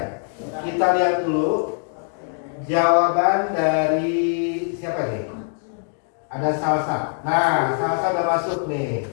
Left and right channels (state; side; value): silent; right; digital silence